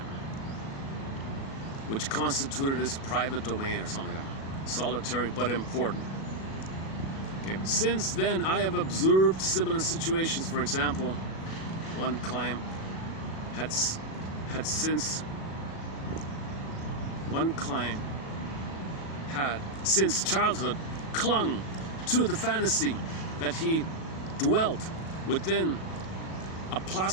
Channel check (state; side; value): late; right; 37 ms